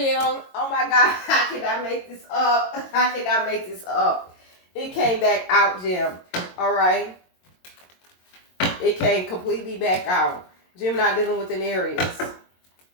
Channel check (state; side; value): late; right; 22 ms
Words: Oh my God. How can I make this up? How can I make this up? It came back out, Jim. All right. It came completely back out. Gemini dealing with an Aries.